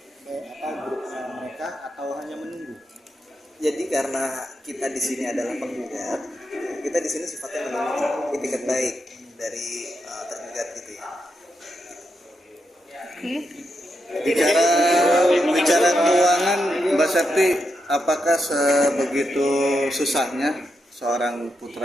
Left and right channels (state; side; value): normal; both; correlation 0.84